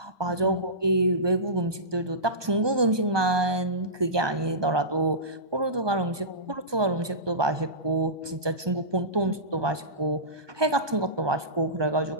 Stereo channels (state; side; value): late; left; 1.2 ms